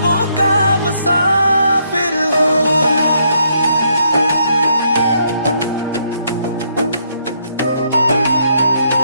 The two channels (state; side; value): inverted; both; correlation -0.73